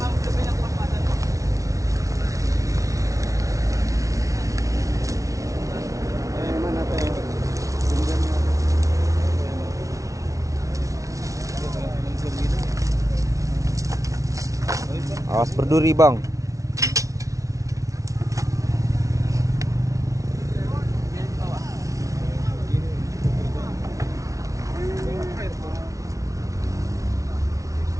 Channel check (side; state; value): left; late; 0.16 ms